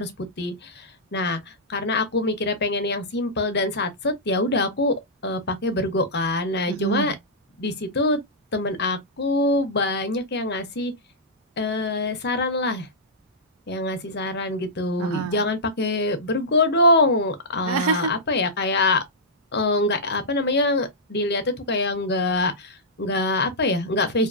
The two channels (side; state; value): both; normal; correlation -0.13